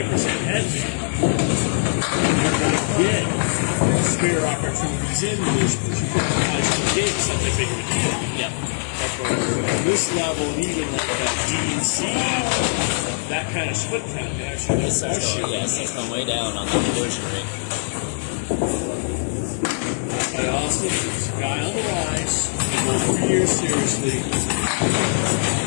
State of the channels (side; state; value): right; silent; digital silence